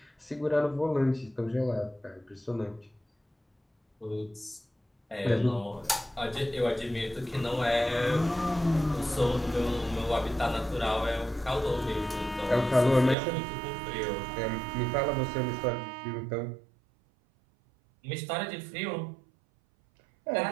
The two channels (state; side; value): drops out; left; at 13.2 s